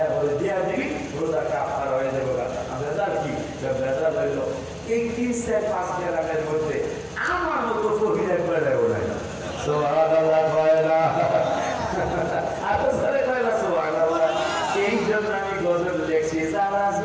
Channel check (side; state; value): both; identical; correlation 1.00